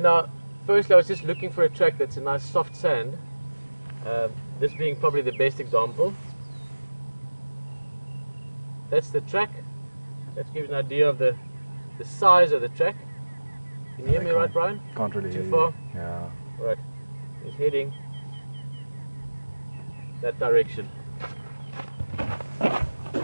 now, firstly, I was just looking for a track that's a nice soft sand. This being probably the best example. That's the track. That gives an idea of the size of the track. Can you hear me right, Brian? Can't really hear Too far? you. Yeah. Right. He's heading that direction.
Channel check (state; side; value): inverted; both; correlation -1.00